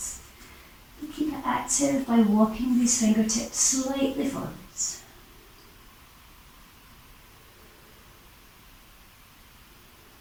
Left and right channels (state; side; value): identical; both; correlation 1.00